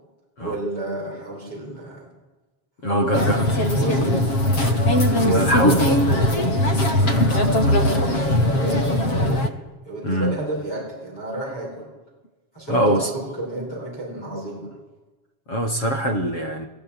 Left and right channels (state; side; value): late; right; 7.3 ms